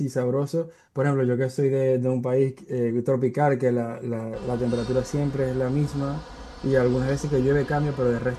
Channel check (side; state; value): both; identical; correlation 1.00